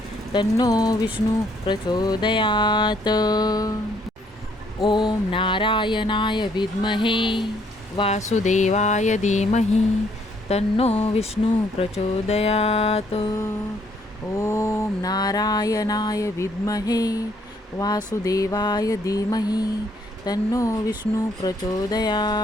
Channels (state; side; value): normal; both; correlation 0.67